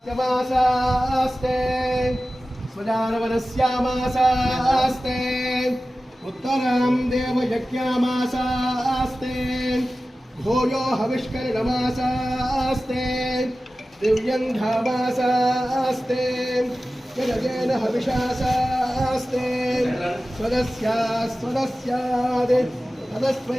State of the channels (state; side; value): normal; both; correlation 0.95